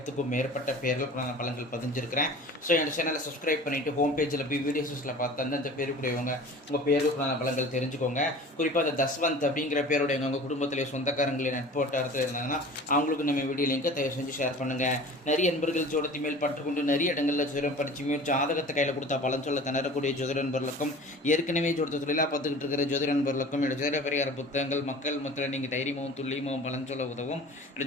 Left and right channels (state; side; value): normal; both; correlation 0.40